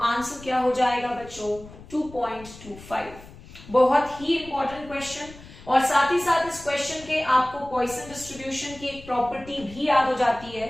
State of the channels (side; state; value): left; noise; rumble, 18 dB below the sound